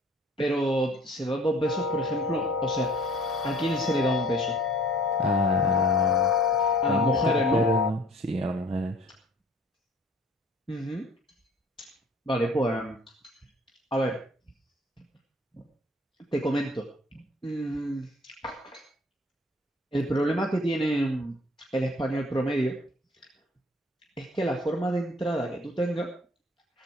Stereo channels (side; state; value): both; normal; correlation 0.51